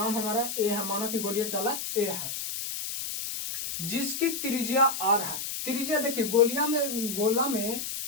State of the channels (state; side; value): noise; left; hiss, 5 dB below the sound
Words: हमारा ए है। माना कि गोलीय चालक ए है जिसकी त्रिज्या आर है। त्रिज्या देखिए, गोला में